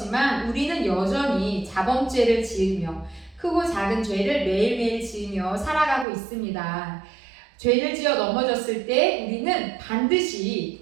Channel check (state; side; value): drops out; left; at 6.1 s